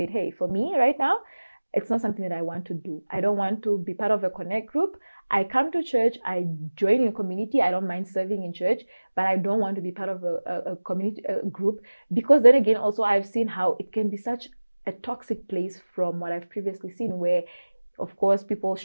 hey, for me right now, it's not something that I want to do. I don't want to be part of a connect group. I come to church, I join in a community. I don't mind serving in church, but I don't want to be part of a community group, because then again, also I've seen how it can be such a toxic place from what I've previously seen, where, of course, people,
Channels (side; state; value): both; inverted; correlation -1.00